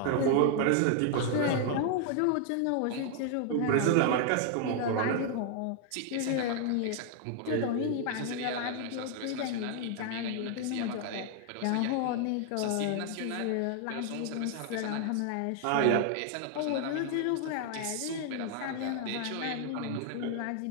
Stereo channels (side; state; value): both; different; correlation 0.00